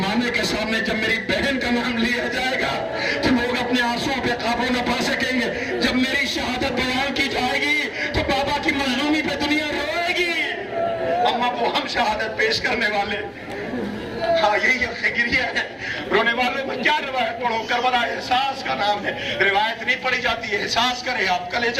کے سامنے جب میری بہن کا نام لیا جائے گا تو لوگ اپنے آنسوں پہ قابو نہ پا سکیں گے. جب میری شہادت بیان کی جائے گی تو بابا کی مظلومی پہ دنیا روئے گی. اماں وہ ہم شہادت پیش کرنے والے, ہاں یہی فکریہ ہے. رونے والوں میں کیا روایت پڑھو, کربلا احساس کا نام ہے, روایت نہیں پڑھی جاتی ہے, احساس کرے آپ,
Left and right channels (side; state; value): both; identical; correlation 1.00